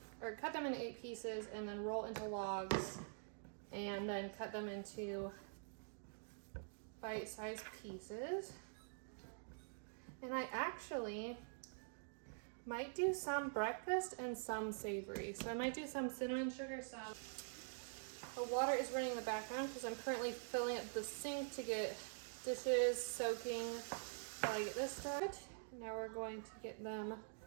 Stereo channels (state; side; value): silent; left; digital silence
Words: into 8 pieces and then roll into logs and then cut them into bite-sized pieces. And I actually might do some breakfast and some savory. So I might do some cinnamon sugar, some. The water is running in the background because I'm currently filling up the sink to get dishes soaking while I get this started. Now we're going to get them